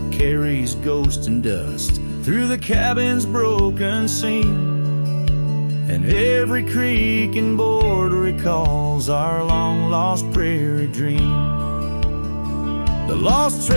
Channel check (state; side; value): inverted; both; correlation -1.00